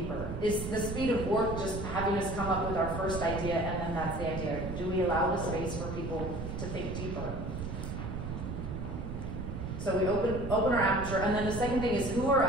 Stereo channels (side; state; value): right; noise; rumble, 5 dB below the sound